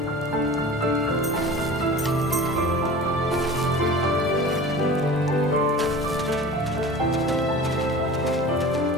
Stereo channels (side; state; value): both; normal; correlation 0.39